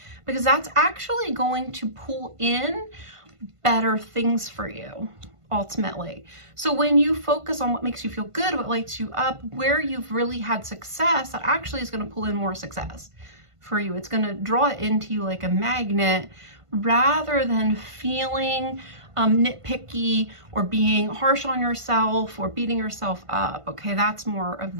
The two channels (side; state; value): left; late; 1.5 ms